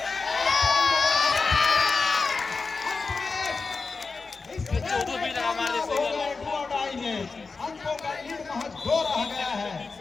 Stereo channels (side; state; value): right; quieter; 4.3 dB